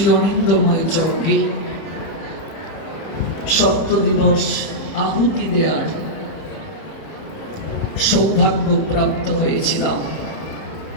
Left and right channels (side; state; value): right; late; 30 ms